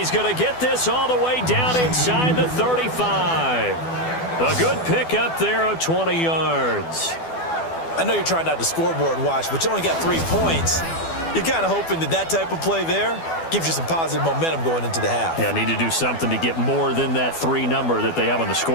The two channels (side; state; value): right; late; 12 ms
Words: going to get this all the way down inside the 35. A good pick up there of 20 yards. I know you're trying not to scoreboard watch, but you only got 3 points. You're kind of hoping that that type of play there gives you some positive momentum going into the half. Yeah, need to do something to get more than that 3 number that they have on the